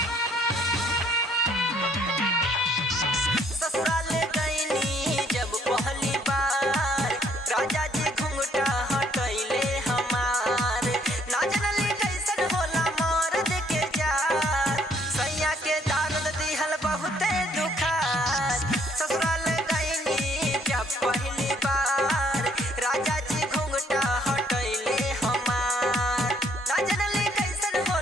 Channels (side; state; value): both; normal; correlation 0.65